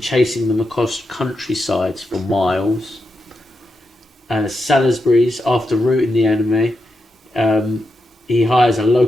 them across countrysides for miles. Salisbury's, after routing the enemy, he hires a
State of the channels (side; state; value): both; normal; correlation 0.86